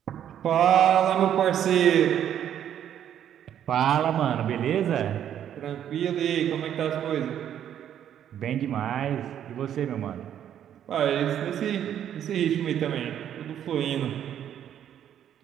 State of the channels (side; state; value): left; quieter; 10.0 dB